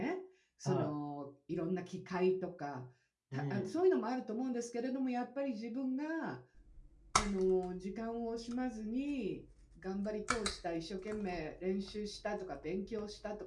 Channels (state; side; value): identical; both; correlation 1.00